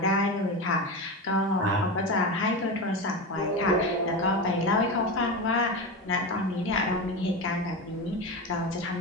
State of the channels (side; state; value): both; normal; correlation 0.20